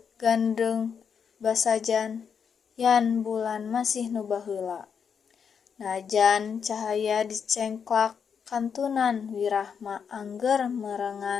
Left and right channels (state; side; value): quieter; right; 6.8 dB